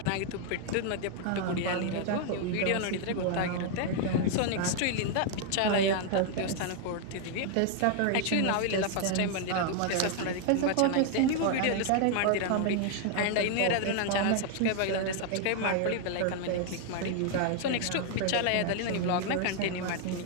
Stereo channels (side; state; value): both; different; correlation 0.00